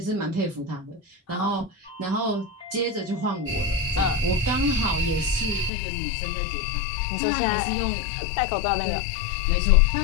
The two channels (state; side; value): drops out; right; at 5.7 s